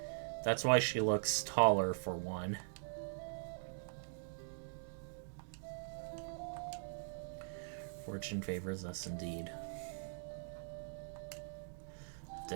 That's why she looks taller, for one. Fortune favors us indeed.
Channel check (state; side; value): silent; left; digital silence